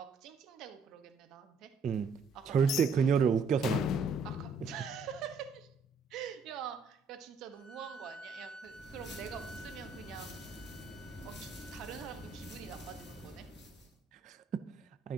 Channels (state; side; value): quieter; left; 4.3 dB